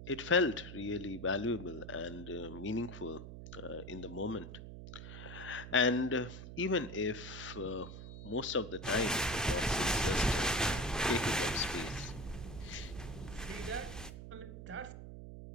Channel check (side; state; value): right; noise; hum, 11 dB below the sound